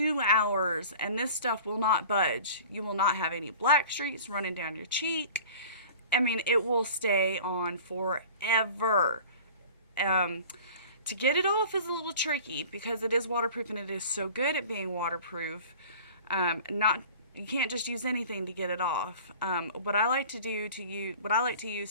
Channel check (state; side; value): inverted; both; correlation -0.42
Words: hours, and this stuff will not budge. You will not have any black streaks running down your cheek. I mean, it will stay on forever. To get it off is a little tricky because it is waterproof and it is so good at being waterproof. You can't just use anything to get it off. What I like to